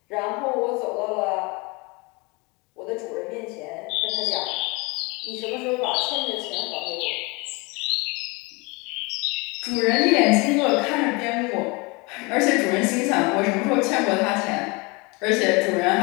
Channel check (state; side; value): quieter; right; 27.3 dB